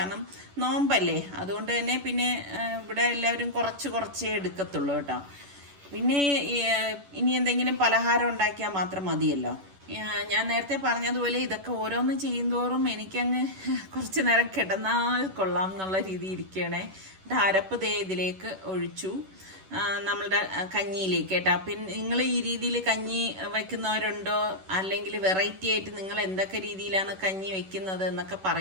നോമ്പല്ലേ. അതുകൊണ്ട് തന്നെ പിന്നെ ഇവിടെ എല്ലാവരും കുറച്ചേ എടുക്കത്തുള്ളൂ കേട്ടോ. പിന്നെ ഇനി എന്തെങ്കിലും പലഹാരം ഉണ്ടാക്കിയാൽ മാത്രം മതിയല്ലോ. ഞാൻ നേരത്തെ പറഞ്ഞതുപോലെ ഇതൊക്കെ ഓരോന്ന് ചെയ്യുന്തോറും എനിക്കങ്ങ് കുറച്ച് നേരം കിടന്നാൽ കൊള്ളാം എന്നുള്ള രീതി ഇരിക്കണേ. അരപ്പ് ഇതിലേക്ക് ഒഴിച്ചു നമ്മളുടെ കഞ്ഞിയിലേക്ക് കേട്ടോ. പിന്നെ നിങ്ങൾ ഈ രീതിയിൽ കഞ്ഞി വെക്കുന്നവരുണ്ടോ, അല്ലെങ്കിൽ വെറൈറ്റി ആയിട്ട് നിങ്ങൾ എന്തൊക്കെ രീതിയിലാണ് കഞ്ഞി വെക്കുന്നത് എന്നൊക്കെ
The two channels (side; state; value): left; late; 11 ms